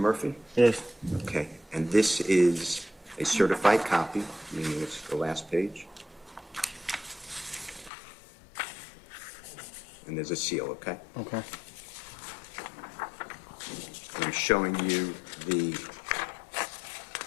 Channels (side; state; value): right; drops out; at 7.9 s